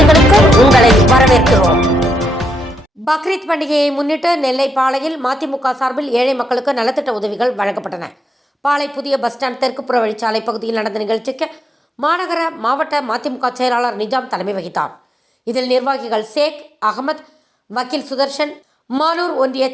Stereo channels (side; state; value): both; normal; correlation 0.82